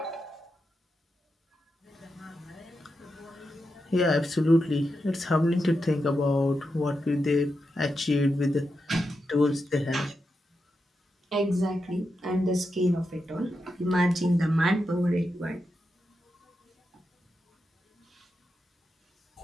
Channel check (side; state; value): both; normal; correlation 0.87